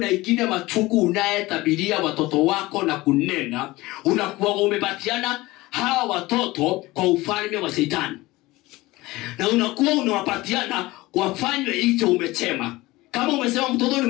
ingine machuku unayetabiria watoto wako na kunena, unakuwa umepatiana hawa watoto kwa ufalme wa Shetani. na unakuwa unawapatiana wafanywe hicho umechema. Kama umesema mtoto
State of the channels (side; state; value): right; quieter; 19.8 dB